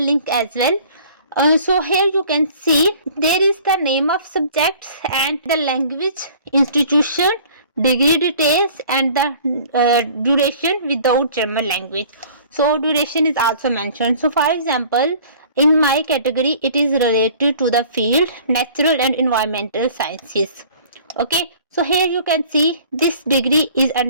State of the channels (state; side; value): inverted; both; correlation -0.50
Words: link as well. So here you can see there is the name of subjects and the language, institution, degree details, and the duration without German language. So duration is also mentioned. So for example, in my category it is related to the field natural and environmental sciences. Okay, so here you can see this degree is